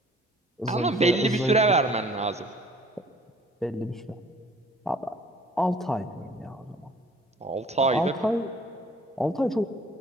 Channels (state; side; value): normal; both; correlation 0.53